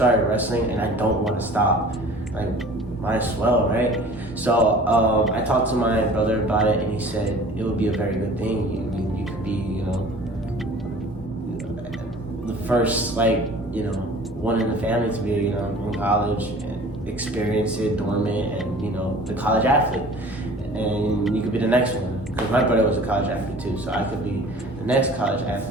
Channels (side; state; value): both; normal; correlation 0.45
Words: wrestling and I don't want to stop. Like, might as well, right? So I talked to my brother about it, and he said it would be a very good thing. You could be, the first, one in the family to be, in college and experience it, dormant, and the college athlete. And you could be the next one, because my brother was a college athlete too, so I could be the next college